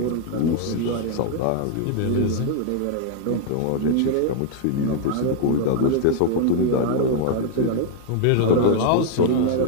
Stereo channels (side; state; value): both; different; correlation -0.01